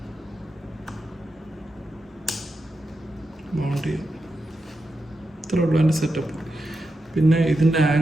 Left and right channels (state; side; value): normal; both; correlation 0.88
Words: മൗണ്ട് ചെയ്യുക. ഇത്രേ ഉള്ളൂ എൻ്റെ സെറ്റപ്പ്. പിന്നെ ഇതിൻ്റെ